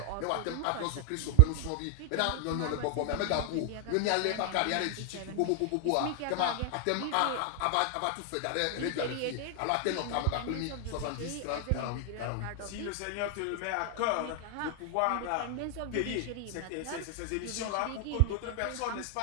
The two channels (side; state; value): both; different; correlation 0.00